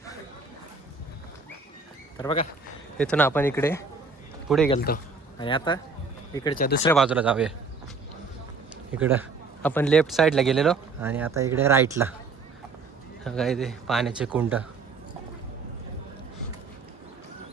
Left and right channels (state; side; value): quieter; left; 4.3 dB